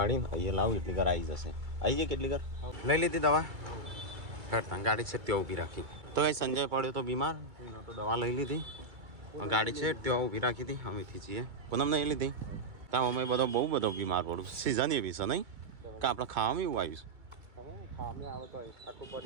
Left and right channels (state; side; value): late; left; 2.2 ms